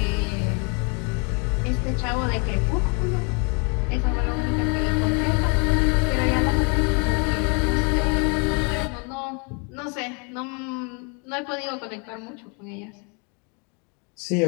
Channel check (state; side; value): quieter; right; 35.0 dB